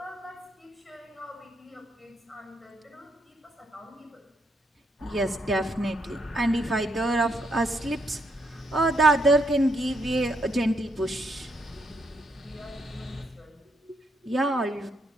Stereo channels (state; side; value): normal; both; correlation 0.76